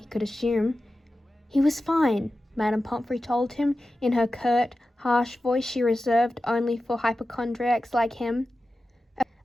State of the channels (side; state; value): both; normal; correlation 0.94